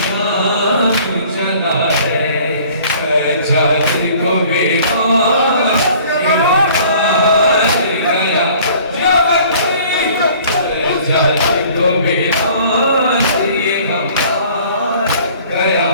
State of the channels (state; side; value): inverted; both; correlation -0.52